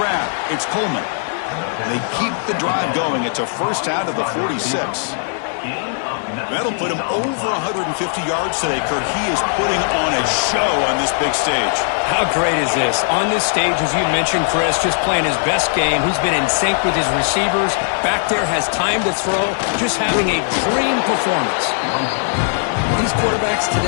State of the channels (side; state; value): right; silent; digital silence